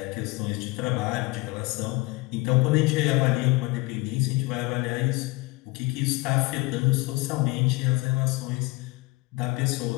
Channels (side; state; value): right; quieter; 22.5 dB